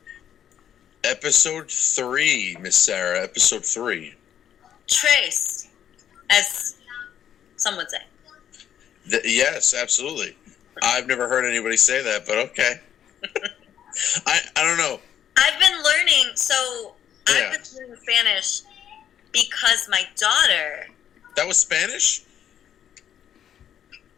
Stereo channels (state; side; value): quieter; right; 9.7 dB